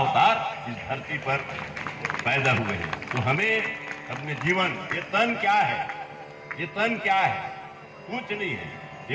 इस धरती पर पैदा हुए हैं। तो हमें अपने जीवन, ये तन क्या है, ये तन क्या है, कुछ नहीं है,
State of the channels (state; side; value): identical; both; correlation 1.00